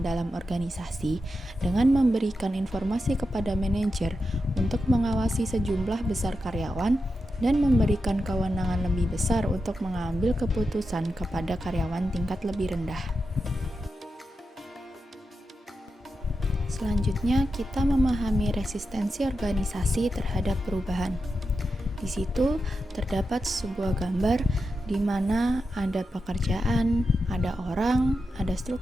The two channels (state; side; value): normal; both; correlation 0.89